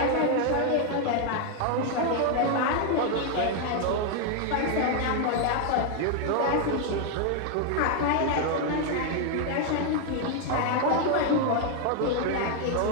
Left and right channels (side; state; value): both; different; correlation 0.00